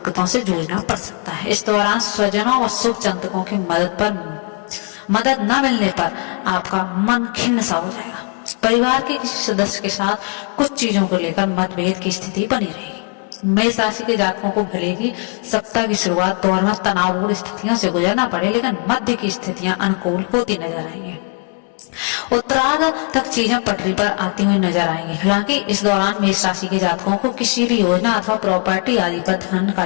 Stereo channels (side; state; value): right; quieter; 33.5 dB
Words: से जूझना पड़ सकता है। इस दौरान स्वजनों व शुभ चिंतकों की मदद न मिलने पर आपका मन खिन्न सा हो जाएगा। परिवार के किसी सदस्य के साथ कुछ चीजों को लेकर मतभेद की स्थिति बनी रहेगी। मेष राशि के जातकों को भले ही सप्ताह की शुरुआत दौर में तनावपूर्ण स्थितियों से गुजरना पड़े, लेकिन मध्य की स्थितियां अनुकूल होती नजर आएंगी। उत्तरार्ध तक चीजें पटरी पर आती हुई नजर आएंगी। हालांकि इस दौरान मेष राशि के जातकों को किसी भी योजना अथवा प्रॉपर्टी आदि पर धन